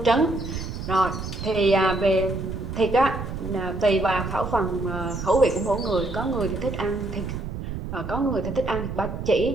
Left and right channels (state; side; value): noise; right; rumble, 6 dB below the sound